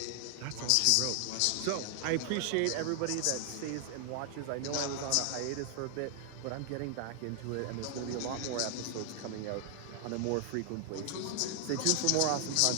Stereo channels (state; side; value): different; both; correlation 0.00